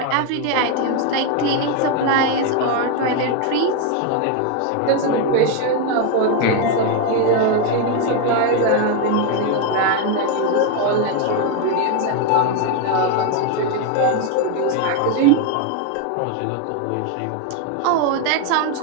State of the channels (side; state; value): both; different; correlation 0.01